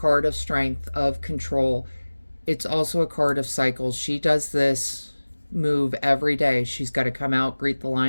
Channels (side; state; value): both; inverted; correlation -1.00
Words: of strength, of control. It's also a card of cycles. She does this move every day. She's got to come out, greet the